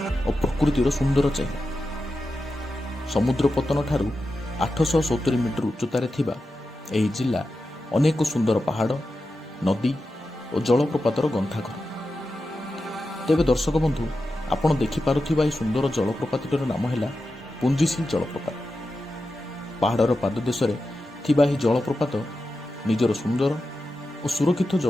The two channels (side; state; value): both; normal; correlation 0.91